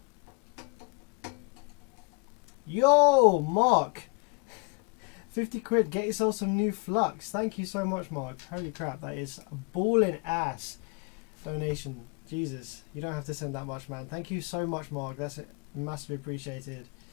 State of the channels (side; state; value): right; quieter; 31.9 dB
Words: Yo, Mark! 50 quid, get yourself some new flux. Thank you so much, Mark. Holy crap, that is a ballin' ass donation. Jesus, you don't have to send that much, man. Thank you so much, Mark. That's massively appreciated.